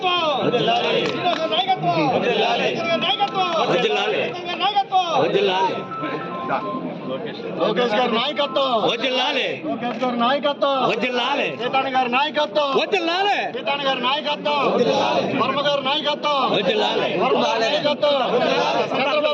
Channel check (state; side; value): identical; both; correlation 1.00